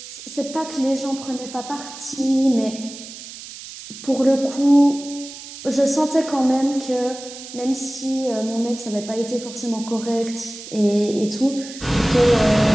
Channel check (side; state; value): right; noise; hiss, 14 dB below the sound